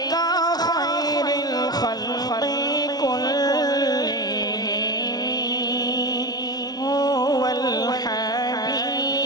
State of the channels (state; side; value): late; right; 0.19 ms